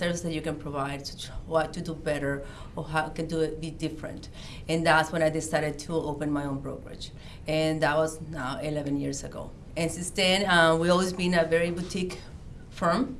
that you can provide, what to do better, or how can do it be different. And that's when I decided to open my own brokerage. And that was now 11 years ago. And since then, we've always been a very boutique firm,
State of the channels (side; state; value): both; identical; correlation 1.00